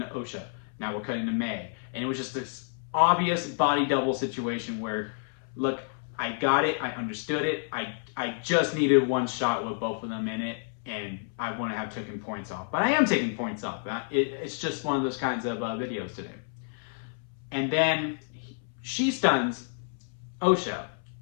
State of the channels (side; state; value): right; silent; 58 dB below the other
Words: Osha, now we're cutting to May. And it was just this obvious body double situation where, look, I got it, I understood it, I just needed one shot with both of them in it, and I wouldn't have taken points off. But I am taking points off. It's just one of those kinds of videos today. And then she stuns Osha,